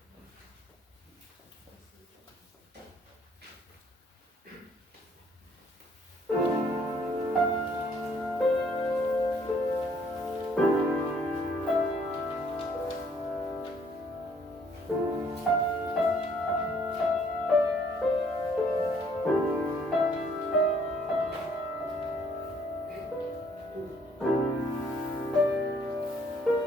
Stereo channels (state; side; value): normal; both; correlation 0.63